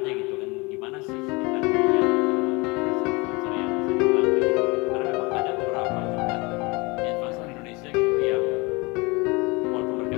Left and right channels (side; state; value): right; quieter; 26.3 dB